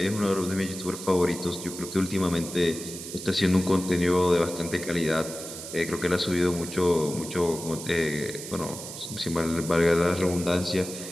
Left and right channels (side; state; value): right; noise; hiss, 10 dB below the sound